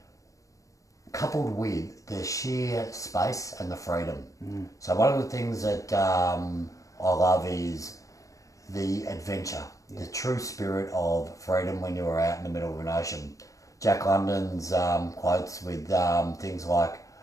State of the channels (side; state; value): right; late; 0.16 ms